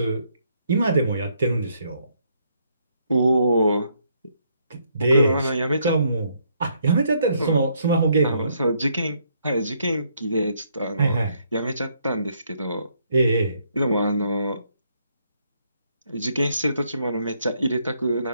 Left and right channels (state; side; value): inverted; both; correlation -0.72